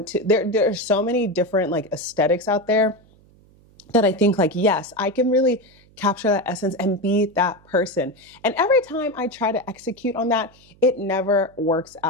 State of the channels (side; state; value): right; noise; hum, 29 dB below the sound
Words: to, there are so many different like aesthetics out there that I think like, yes, I can really capture that essence and be that person. And every time I try to execute on that, it never works